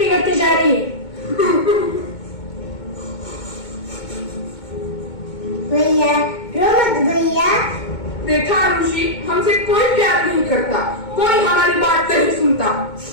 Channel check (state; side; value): late; right; 2.2 ms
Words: जा रही है। भैया रो मत भैया। देखा आरुषि, हमसे कोई प्यार नहीं करता, कोई हमारी बात नहीं सुनता।